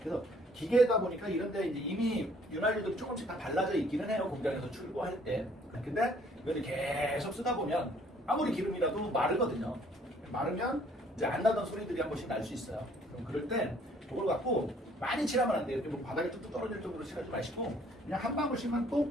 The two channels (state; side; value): normal; both; correlation 0.60